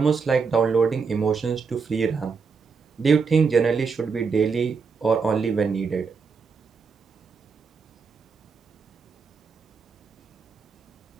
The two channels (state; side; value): quieter; left; 5.2 dB